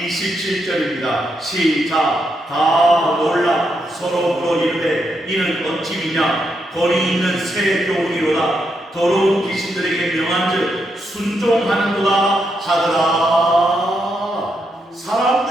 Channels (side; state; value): both; normal; correlation 0.81